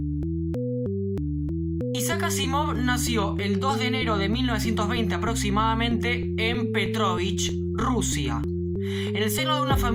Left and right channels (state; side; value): identical; both; correlation 1.00